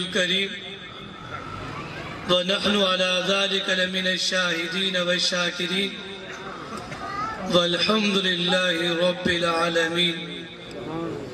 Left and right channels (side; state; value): both; identical; correlation 1.00